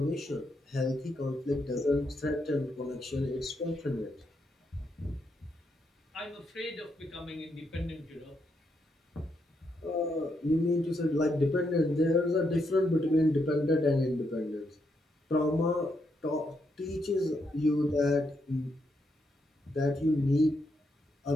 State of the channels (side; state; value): both; normal; correlation 0.79